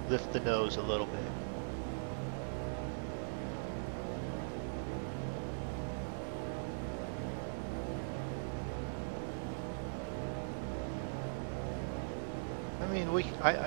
lift the nose a little bit? I mean,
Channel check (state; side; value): silent; left; digital silence